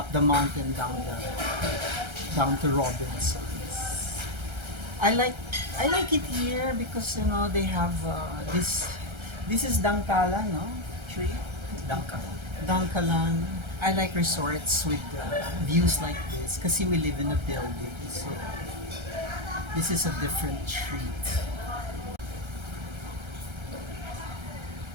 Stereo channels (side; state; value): left; late; 1.3 ms